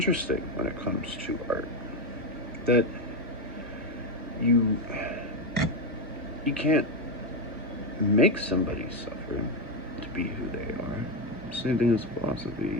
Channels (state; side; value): normal; both; correlation 0.09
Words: when it comes to art, that you can't make somebody suffer to be who they are. Same thing as philosophy.